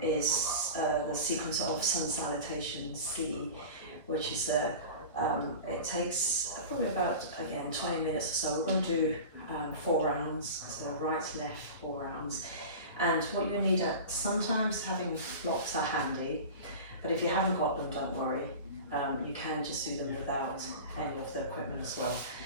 is the sequence of sun salutation C, which is it takes probably about, again, 20 minutes or so. We're going to do 4 rounds, so right, left, 4 rounds. And what you need, sometimes having blocks are handy, but if you haven't got them, don't worry. You can just do them without any of the equipment as well.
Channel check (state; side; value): inverted; both; correlation -0.33